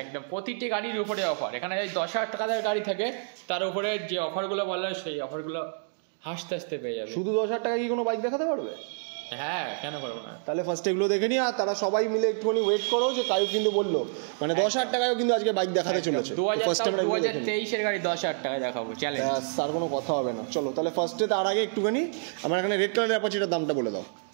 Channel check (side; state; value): left; silent; digital silence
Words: একদম প্রতিটি গাড়ির উপরে অফার, এখানে 10,000 টাকার গাড়ি থাকে তার উপরে যে অফারগুলো বলা হয় সেই অফারগুলো হাসতে হাসতে পেয়ে যাবে। শুধু 10,000 টাকা কি কোনো বাইক দেখাতে পারবে? হ্যাঁ, কেন করবো না। তাহলে ফার্স্ট এগুলো দেখে নি, আর তারা সবাই মিলে একটুখানি ওয়েট করো, যে কায়ু কিন্তু বললো মানে 10,000 টাকায়ও কিন্তু আজকে বাইক দেখাতে চলেছে। ফার্স্ট আমরা 2023-এর গাড়ি 10,000 টাকায় দেখাবো, চ্যালেঞ্জ। আর কোনো কথা হবে না। চলো তাহলে ফার্স্টে তার আগে একটুখানি আমার এখানে রেড কালারের অ্যাপাচিটার দামটা বলে দাও।